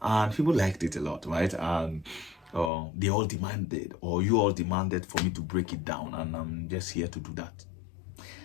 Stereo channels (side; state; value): right; drops out; at 2.7 s